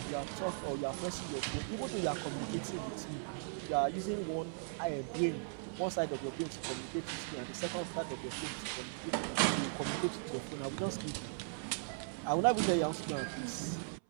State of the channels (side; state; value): left; silent; 52 dB below the other